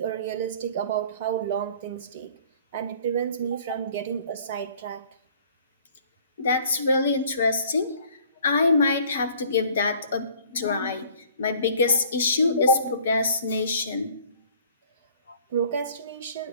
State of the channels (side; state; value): both; inverted; correlation -0.53